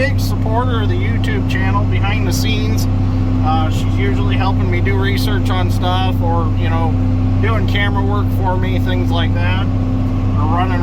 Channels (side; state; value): both; identical; correlation 1.00